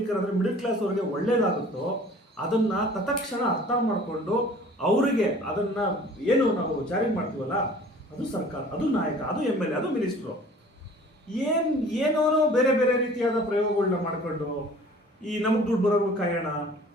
ಅಂದರೆ ಮಿಡಲ್ ಕ್ಲಾಸ್ ಅವರಿಗೆ ಒಳ್ಳೇದಾಗುತ್ತೋ ಅದನ್ನು ತತ್ಕ್ಷಣ ಅರ್ಥ ಮಾಡಿಕೊಂಡು ಅವರಿಗೆ ಅದನ್ನು ಏನು ನಾವು ಜಾರಿ ಮಾಡ್ತೀವಲ್ಲ, ಅದು ಸರ್ಕಾರ, ಅದು ನಾಯಕ, ಅದು MLA, ಅದು ಮಿನಿಸ್ಟ್ರು, ಏನೋ ಬೇರೆ ರೀತಿಯಾದ ಪ್ರಯೋಗಗಳನ್ನ ಮಾಡಿಕೊಂಡು ಈ ನಮಗೆ ದುಡ್ಡು ಬರೋರು ಕಾಯೋಣ.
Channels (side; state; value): both; normal; correlation 0.49